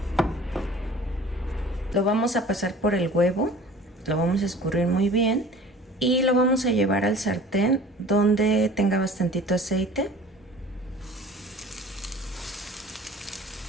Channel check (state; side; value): normal; both; correlation 0.45